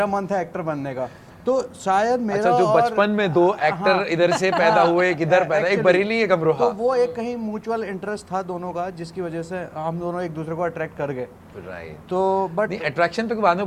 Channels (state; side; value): identical; both; correlation 1.00